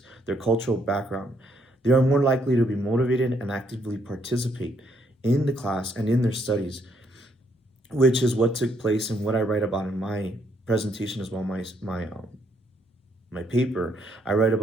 their cultural background. They are more likely to be motivated and actively participate in the class and in their studies, which is what took place and what I write about in my presentation as well, my paper. I write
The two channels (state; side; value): normal; both; correlation 0.71